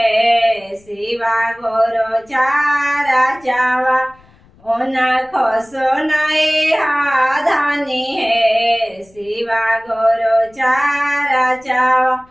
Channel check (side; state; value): left; noise; rumble, 29 dB below the sound